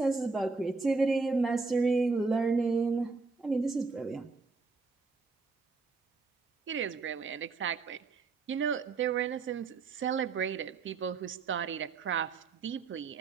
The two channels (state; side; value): quieter; left; 4.3 dB